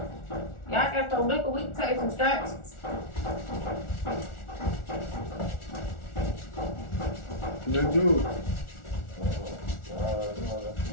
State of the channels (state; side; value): late; right; 1.4 ms